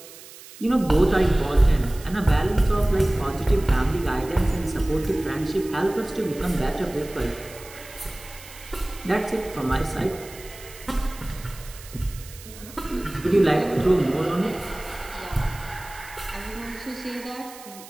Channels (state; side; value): noise; right; hiss, 18 dB below the sound